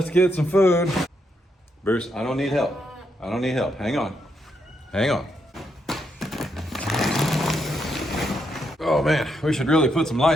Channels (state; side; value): normal; both; correlation 0.79